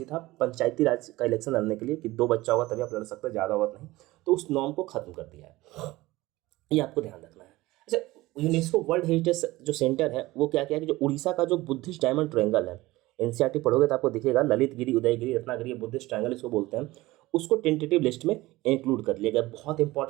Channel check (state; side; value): quieter; left; 18.9 dB